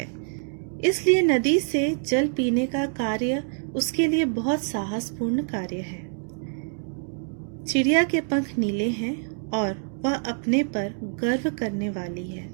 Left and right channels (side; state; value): left; silent; 58 dB below the other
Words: इसलिए नदी से जल पीने का कार्य उसके लिए बहुत साहसपूर्ण कार्य है। चिड़िया के पंख नीले हैं और वह अपने पर गर्व करने वाली है।